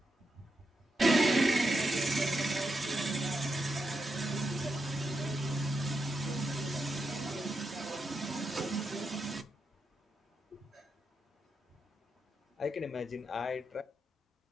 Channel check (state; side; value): normal; both; correlation 0.85